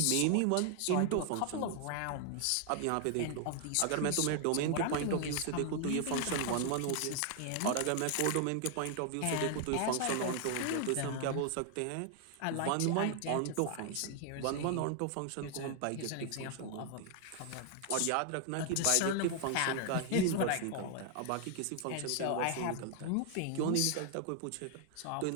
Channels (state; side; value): different; both; correlation 0.00